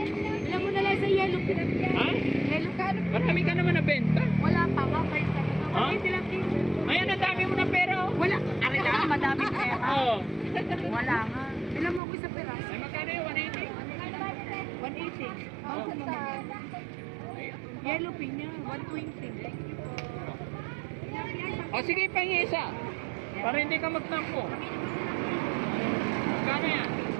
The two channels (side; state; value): left; drops out; at 12.0 s